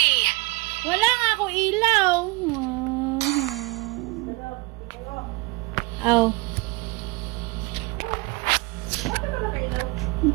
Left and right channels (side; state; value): left; quieter; 25.1 dB